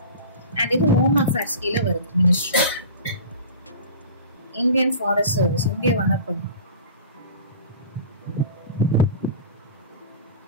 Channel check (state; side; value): inverted; both; correlation -0.37